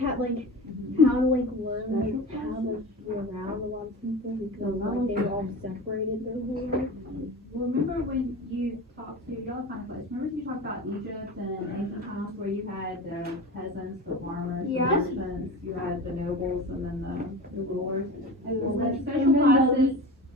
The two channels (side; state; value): both; normal; correlation 0.32